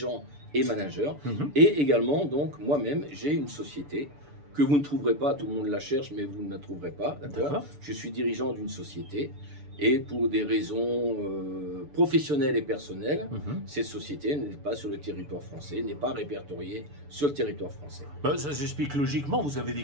et managers. Et également, donc, moi-même, j'ai une société que vous ne trouverez pas, tout le monde la cherche, mais vous ne la trouverez pas, d'accord? Je suis dirigeant d'une société. Et pour des raisons professionnelles et personnelles, cette société n'est pas sur le territoire français, n'est pas répertoriée sur le territoire français. Ça s'explique logiquement, vous avez des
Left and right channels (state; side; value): late; left; 6.9 ms